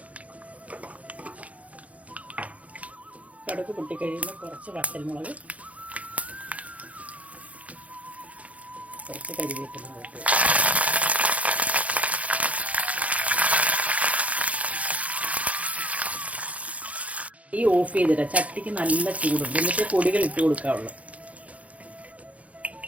കടുക് പൊട്ടിക്കഴിയുമ്പോൾ കുറച്ച് വറ്റൽമുളക്, കുറച്ച് കരിവേപ്പില ഇട്ട് ഈ ഓഫ് ചെയ്തിട്ട് ചട്ടിക്ക് നല്ല ചൂടുണ്ട്. എന്നിട്ട് പൊടികൾ ഇട്ട് കൊടുക്കാവുള്ളൂ.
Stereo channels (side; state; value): left; late; 0.067 ms